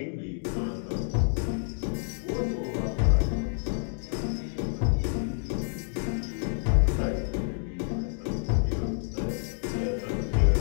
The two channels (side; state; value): right; silent; 59 dB below the other